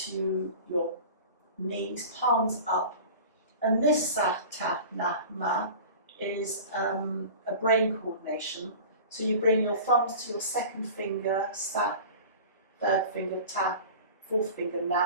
your knees, palms up. And this Satanama is a brain coordination. So you bring your thumbs to your second finger, sa, third finger, ta, fourth finger,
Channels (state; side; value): inverted; both; correlation -0.37